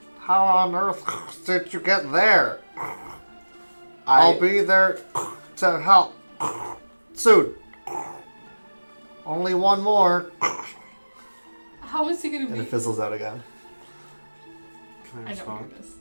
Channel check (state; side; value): inverted; both; correlation -1.00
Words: How on earth did you get there? I'll be there to help. Soon. Only one more. How is he gonna And be? it fizzles out again. Can I I don't respond?